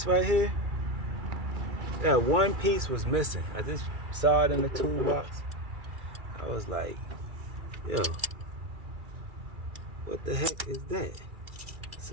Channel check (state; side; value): late; left; 2.3 ms